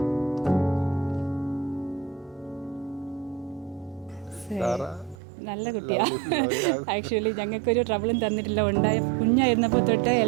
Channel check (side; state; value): left; drops out; at 5.2 s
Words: നല്ല കുട്ടിയാണ്. ആക്ച്വലി ഞങ്ങൾക്കൊരു ട്രബിളും തന്നിട്ടില്ല. ഉണ്ടായ കുഞ്ഞായിരുന്നപ്പോൾ തൊട്ട്